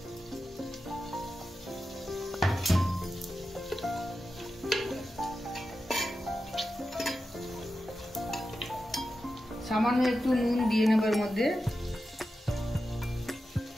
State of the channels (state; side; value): normal; both; correlation 0.91